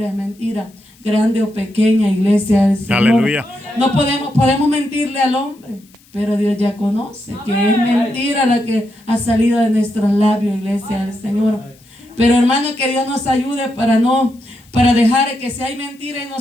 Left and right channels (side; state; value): left; noise; hiss, 30 dB below the sound